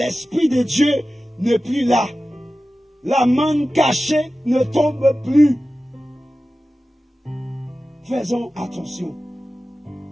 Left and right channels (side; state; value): both; normal; correlation 0.95